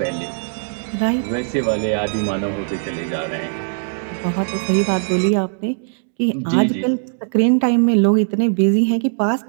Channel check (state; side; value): silent; left; digital silence